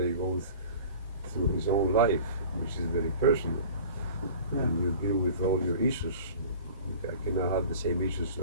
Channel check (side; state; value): both; inverted; correlation -0.41